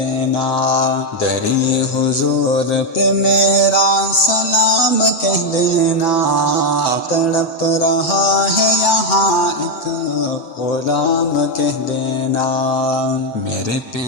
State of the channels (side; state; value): right; late; 7.9 ms